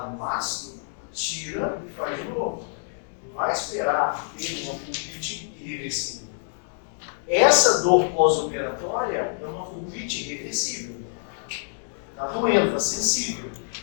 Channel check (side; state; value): right; silent; digital silence